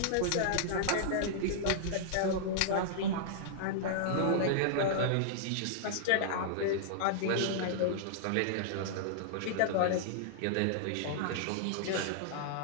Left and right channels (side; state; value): both; different; correlation -0.01